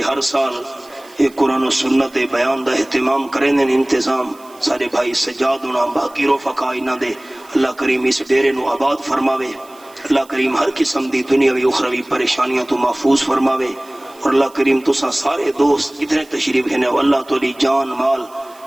ہر سال ایک قرآن و سنت بیان دا اہتمام کرنے انتظام سارے بھائی سجاد ہونا باقی رفقا انہاں دے، اللہ کریم اس ڈیرے نو آباد فرماوے، اللہ کریم ہر قسم دی دنیاوی اخروی پریشانیاں تو محفوظ فرماوے، اور اللہ کریم تساں سارے دوست ادھر تشریف ہیں اللہ تولی جان مال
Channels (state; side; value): noise; right; hiss, 26 dB below the sound